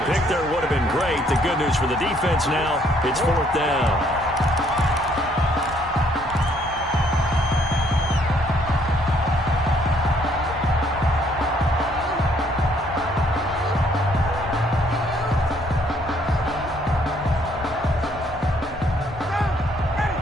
pick there would have been great. The good news for the defense now, it's 4th down.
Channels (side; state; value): both; normal; correlation 0.66